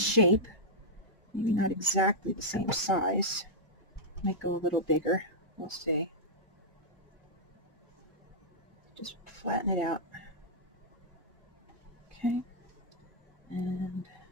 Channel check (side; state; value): both; normal; correlation -0.08